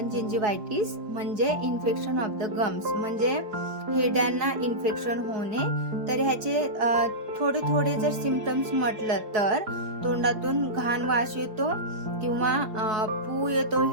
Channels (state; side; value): late; left; 4.8 ms